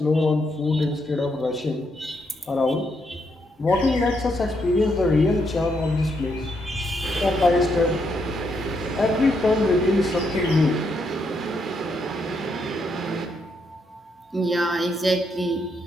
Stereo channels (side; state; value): both; normal; correlation 0.78